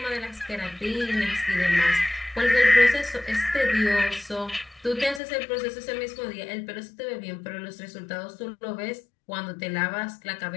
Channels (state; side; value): drops out; right; at 5.2 s